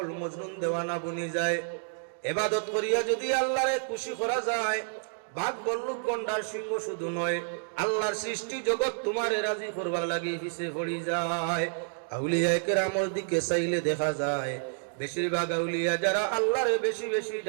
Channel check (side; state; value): left; silent; digital silence